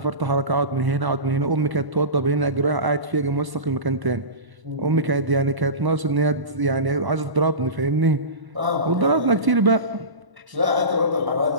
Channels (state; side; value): late; left; 1.0 ms